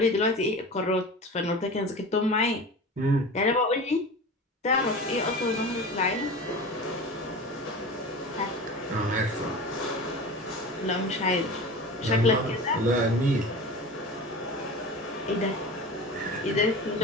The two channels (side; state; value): both; normal; correlation 0.33